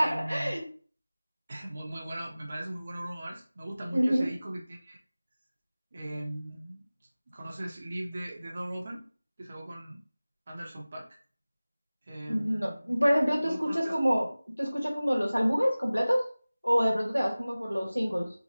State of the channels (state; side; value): inverted; both; correlation -0.98